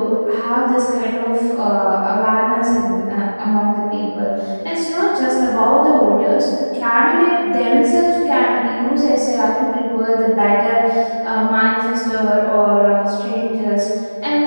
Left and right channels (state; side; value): inverted; both; correlation -1.00